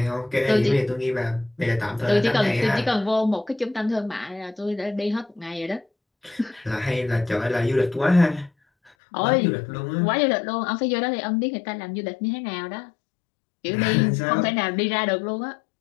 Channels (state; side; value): drops out; right; at 8.9 s